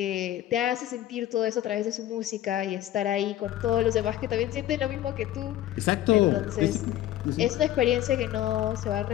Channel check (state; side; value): quieter; right; 13.2 dB